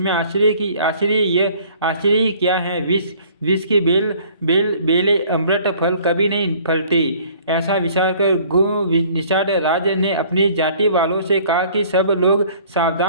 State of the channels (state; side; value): inverted; both; correlation -0.55